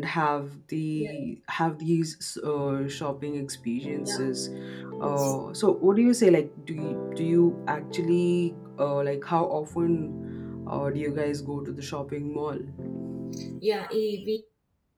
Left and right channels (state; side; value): identical; both; correlation 1.00